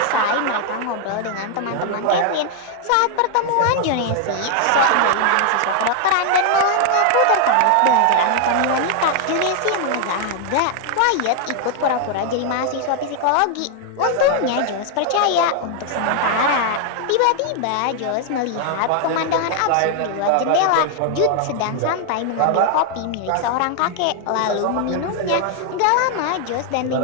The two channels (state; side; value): different; both; correlation 0.00